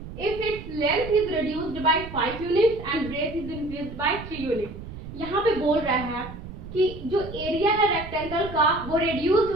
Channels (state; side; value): noise; right; rumble, 12 dB below the sound